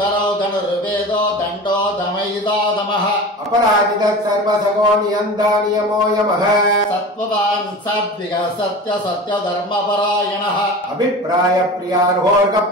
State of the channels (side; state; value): both; normal; correlation 0.33